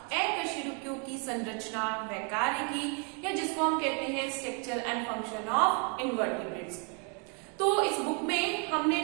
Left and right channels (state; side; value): quieter; left; 37.9 dB